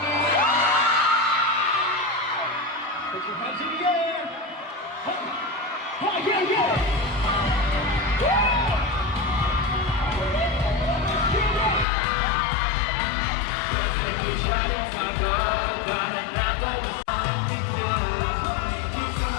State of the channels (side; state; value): right; drops out; at 11.9 s